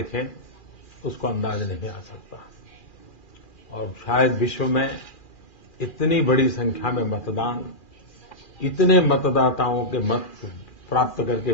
उसको अंदाज नहीं आ सकता। और शायद विश्व में इतनी बड़ी संख्या में मतदान, इतने मतदाताओं के मत प्राप्त करके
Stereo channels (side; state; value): right; late; 2.4 ms